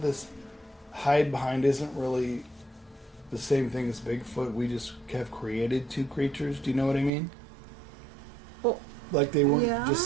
this hide behind isn't really the same thing as Bigfoot. We just have created 2 creatures. Do you know what I mean? Well, like they weren't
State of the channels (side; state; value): left; drops out; at 7.1 s